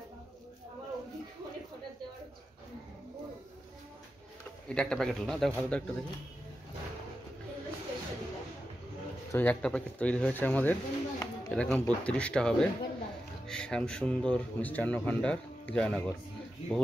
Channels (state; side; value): normal; both; correlation 0.90